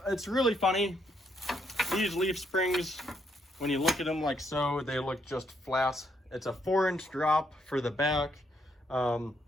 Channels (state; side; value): normal; both; correlation 0.75